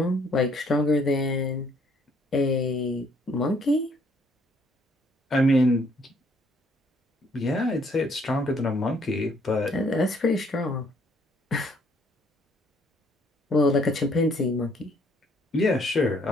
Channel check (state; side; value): normal; both; correlation 0.65